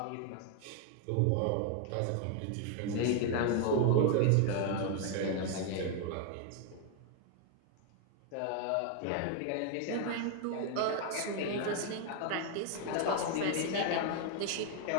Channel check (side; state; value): both; different; correlation 0.00